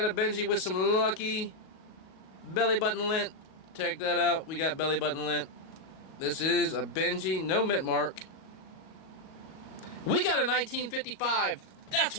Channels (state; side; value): late; right; 38 ms